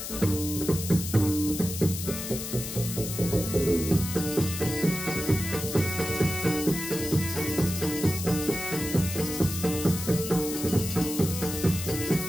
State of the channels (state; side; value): noise; left; hiss, 6 dB below the sound